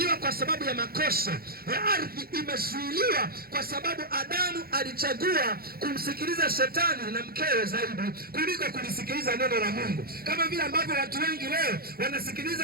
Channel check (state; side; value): late; left; 0.44 ms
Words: kwa sababu ya makosa ya ardhi, imezuiliwa kwa sababu Adamu alichagua kumsikiliza shetani na mkewe zaidi kuliko kulisikiliza neno la Mungu. Kama vile ambavyo watu wengi leo